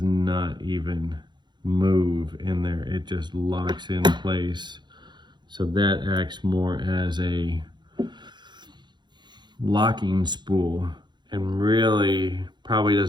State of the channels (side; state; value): left; late; 0.21 ms